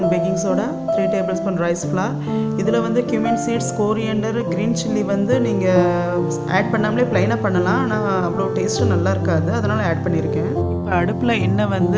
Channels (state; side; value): identical; both; correlation 1.00